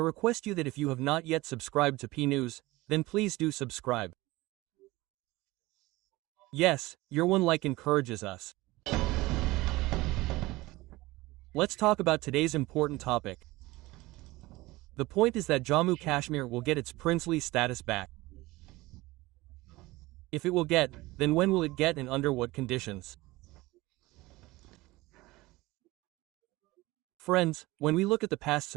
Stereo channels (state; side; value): quieter; left; 20.1 dB